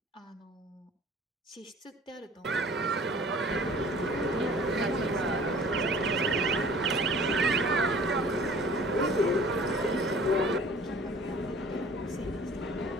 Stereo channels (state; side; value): normal; both; correlation 0.49